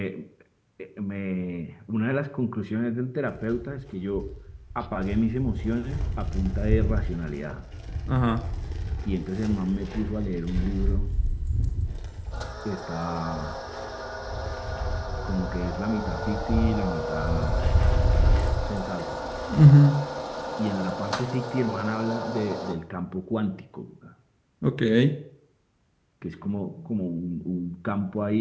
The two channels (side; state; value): both; identical; correlation 1.00